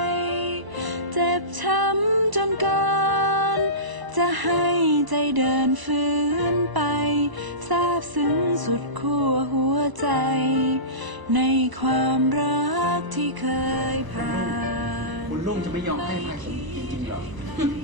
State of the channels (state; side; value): late; left; 1.0 ms